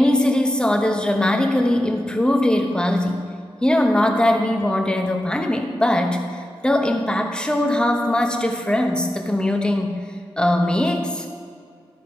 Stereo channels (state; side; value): normal; both; correlation 0.90